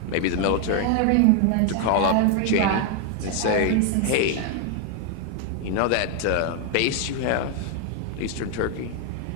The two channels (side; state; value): both; different; correlation 0.00